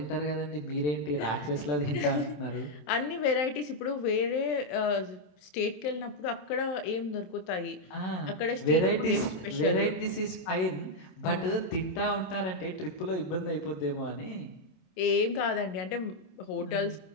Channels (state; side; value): late; right; 27 ms